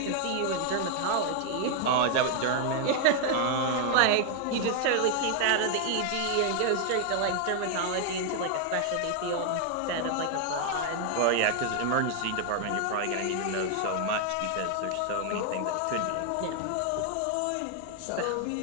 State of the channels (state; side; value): different; both; correlation 0.00